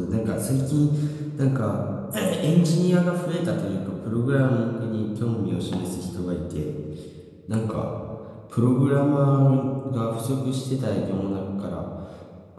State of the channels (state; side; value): identical; both; correlation 1.00